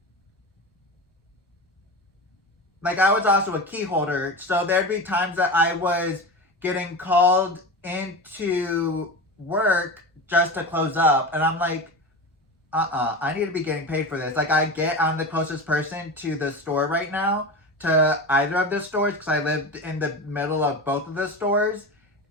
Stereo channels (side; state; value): both; normal; correlation 0.26